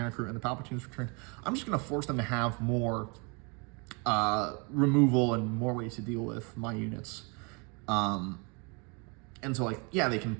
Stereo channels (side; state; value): left; quieter; 32.2 dB